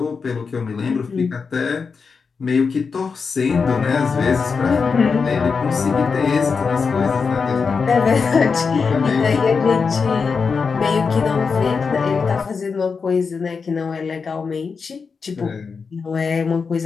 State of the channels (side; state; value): right; quieter; 5.2 dB